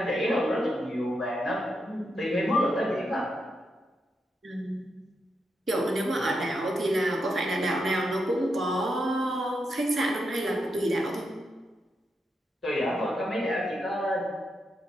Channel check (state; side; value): normal; both; correlation 0.84